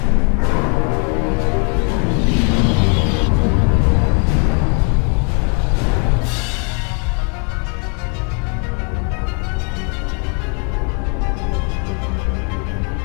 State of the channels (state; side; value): quieter; right; 38.2 dB